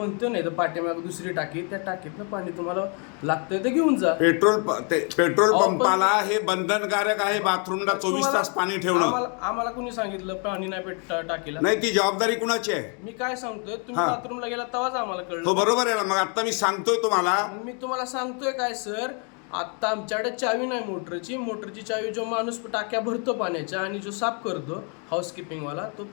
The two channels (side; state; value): right; quieter; 37.6 dB